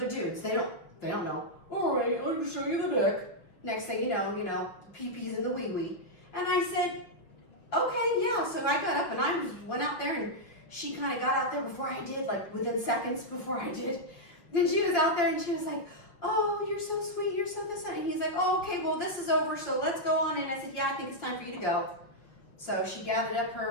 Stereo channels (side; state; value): right; late; 6.0 ms